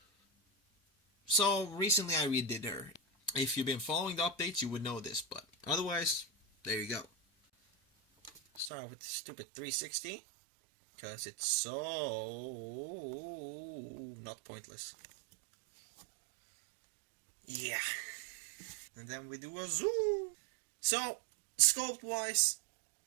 So recently I redid her. If you've been following the updates, you would know this, but otherwise, there you go. Start with the stupid 360. Because it's so not pointless. Yeah. And then we do a zoom. So, sculpt wise,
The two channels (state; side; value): drops out; left; at 8.7 s